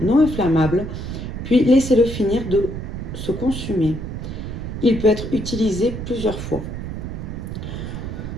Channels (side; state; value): right; noise; rumble, 6 dB below the sound